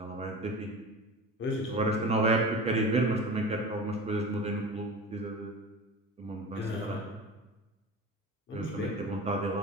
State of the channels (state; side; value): normal; both; correlation 0.33